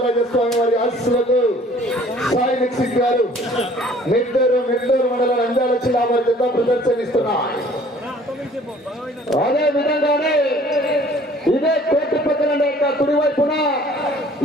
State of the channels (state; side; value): normal; both; correlation 0.54